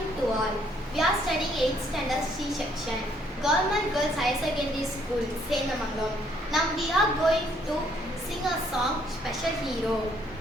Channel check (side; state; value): both; normal; correlation 0.67